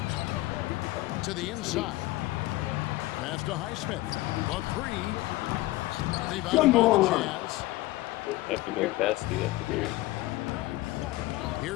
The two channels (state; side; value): quieter; right; 18.6 dB